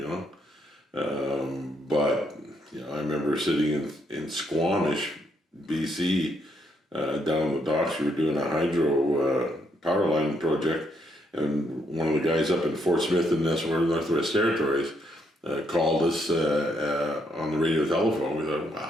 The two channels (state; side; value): normal; both; correlation 0.75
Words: but I remember sitting in Squamish, BC. Down the docks, we were doing a hydro power line project, and one of the guys up in Fort Smith in the Northwest Territories called us on the radio telephone. We thought,